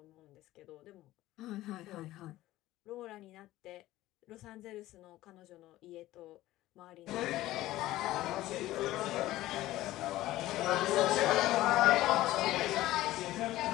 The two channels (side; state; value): right; quieter; 16.0 dB